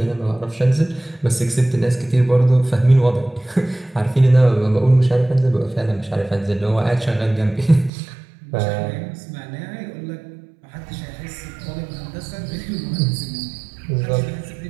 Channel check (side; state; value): left; drops out; at 7.9 s